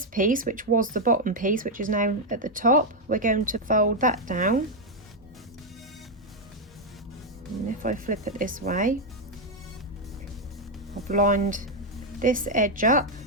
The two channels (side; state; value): both; normal; correlation 0.01